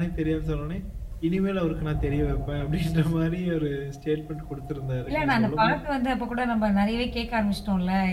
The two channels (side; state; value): both; identical; correlation 1.00